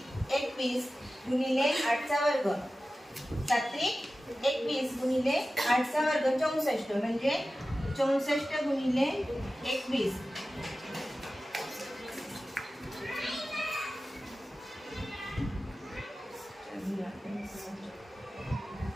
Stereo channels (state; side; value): normal; both; correlation 0.95